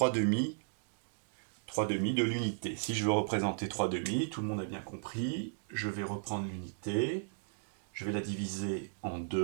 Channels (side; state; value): left; silent; digital silence